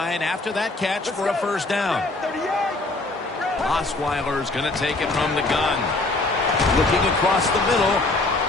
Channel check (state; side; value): quieter; right; 3.0 dB